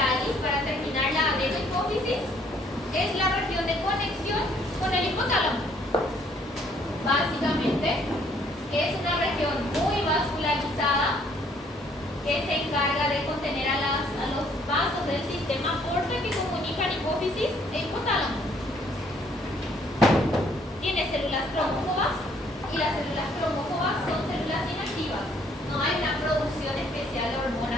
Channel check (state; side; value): normal; both; correlation 0.64